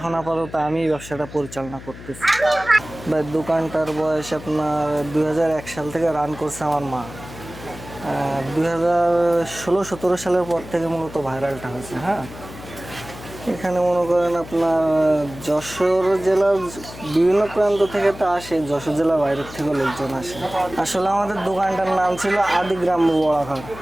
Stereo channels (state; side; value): noise; left; hum, 15 dB below the sound